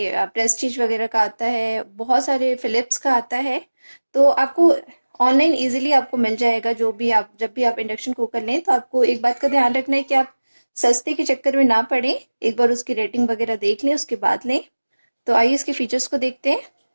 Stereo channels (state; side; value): inverted; both; correlation -1.00